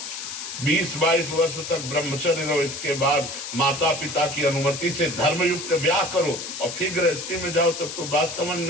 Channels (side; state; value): left; noise; hiss, 7 dB below the sound